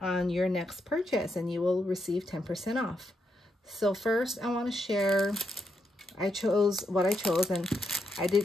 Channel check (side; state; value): both; normal; correlation 0.81